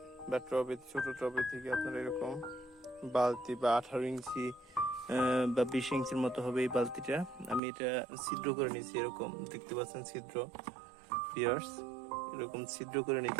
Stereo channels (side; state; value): left; drops out; at 7.6 s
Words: বা টবের ছোট টবের থেকে আপনারা এরকম বালতি বা 18 ইঞ্চি বা 20 ইঞ্চির মতো হবে এই বালতিটা। আমি এটা ছিদ্র করে নিয়েছি, এরকম দেখতে পাচ্ছেন ছিদ্র। ভিউয়ার্স, এরকম ছিদ্র করে